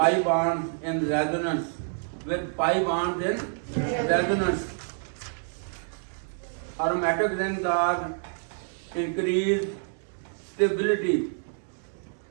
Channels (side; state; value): left; silent; digital silence